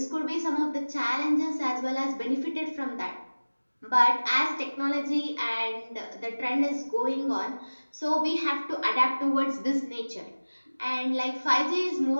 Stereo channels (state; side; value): inverted; both; correlation -1.00